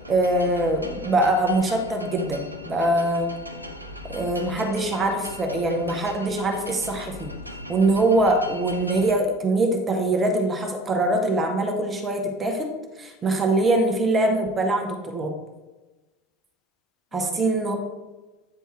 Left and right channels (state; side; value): normal; both; correlation 0.47